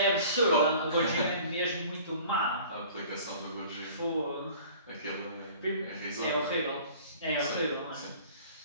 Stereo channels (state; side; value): inverted; both; correlation -0.47